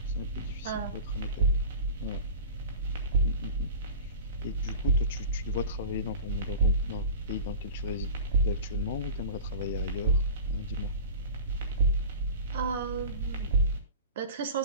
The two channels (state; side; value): inverted; both; correlation -0.34